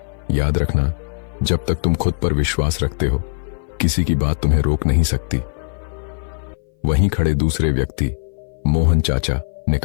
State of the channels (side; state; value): right; silent; 59 dB below the other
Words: याद रखना, जब तक तुम खुद पर विश्वास रखते हो, किसी की बात तुम्हें रोक नहीं सकती। वहीं खड़े दूसरे व्यक्ति मोहन चाचा ने